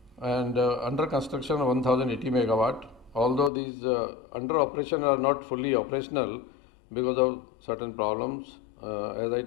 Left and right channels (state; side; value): drops out; right; at 3.5 s